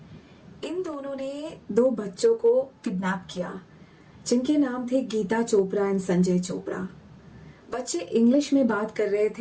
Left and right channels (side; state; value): both; identical; correlation 1.00